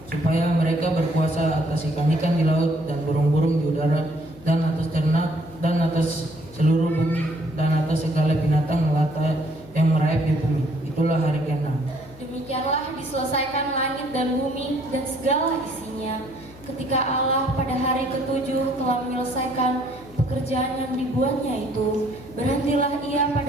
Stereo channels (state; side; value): noise; left; hum, 22 dB below the sound